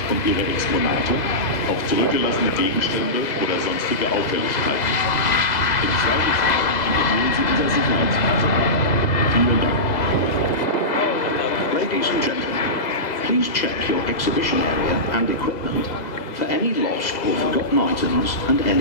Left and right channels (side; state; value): right; late; 2.0 ms